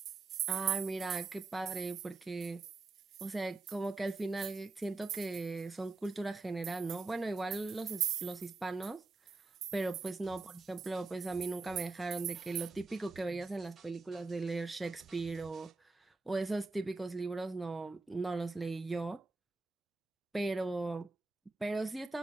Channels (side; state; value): left; quieter; 3.6 dB